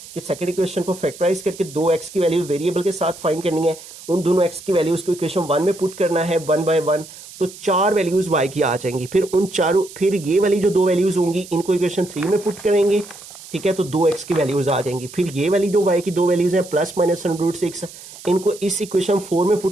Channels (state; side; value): noise; right; hiss, 17 dB below the sound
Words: कि सेकंड इक्वेशन को फैक्टराइज करके 2x की वैल्यू वेरिएबल के साथ फाइंड करनी है, उन दोनों x की वैल्यूज को इक्वेशन 1 में पुट करना है 1 बाय 1, तो 4 वैल्यूज y की आ जाएंगी। फिर उन चारों, फिर ये वाली जो 2 वैल्यूज होंगी इनको इक्वेशन 3 में पुट करेंगे, ठीक है, तो 2x की वैल्यूज आ जाएंगी। फिर ये वाली जो y की 2 वैल्यूज है प्लस माइनस अंडर रूट 6, इनको इस इक्वेशन 4 में